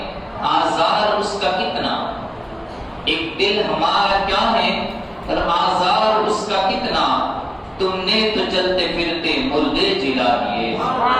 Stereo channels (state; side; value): identical; both; correlation 1.00